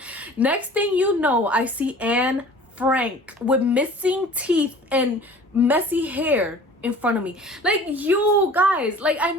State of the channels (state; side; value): normal; both; correlation 0.45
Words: Next thing you know, I see Anne Frank with missing teeth and messy hair in front of me. Like, you guys, like, I